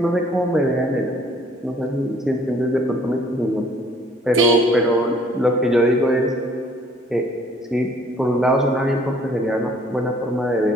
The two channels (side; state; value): both; normal; correlation 0.59